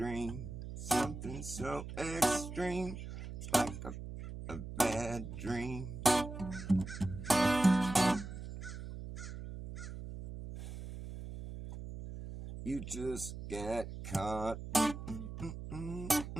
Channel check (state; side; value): noise; right; hum, 9 dB below the sound